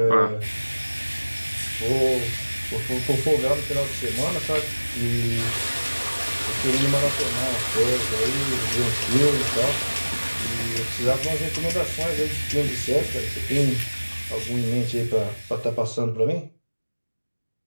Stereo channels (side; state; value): both; inverted; correlation -1.00